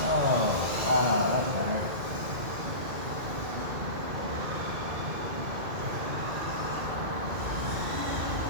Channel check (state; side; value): late; left; 2.0 ms